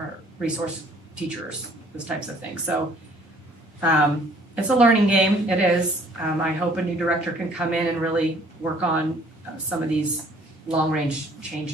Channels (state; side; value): normal; both; correlation 0.58